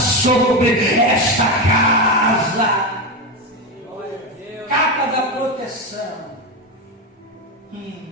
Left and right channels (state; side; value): normal; both; correlation 0.14